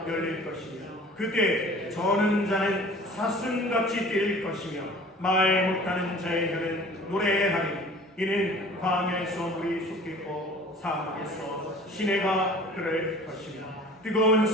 열릴 것이며 그때 저는 자는 사슴같이 뛸 것이며 말 못하는 자의 혀는 노래하리. 이는 광야에서 물이 솟겠고 사막에서 시내가 흐를 것이며 뜨거운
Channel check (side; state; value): both; normal; correlation 0.45